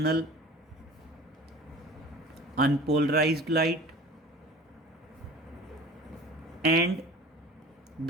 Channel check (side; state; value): both; normal; correlation 0.42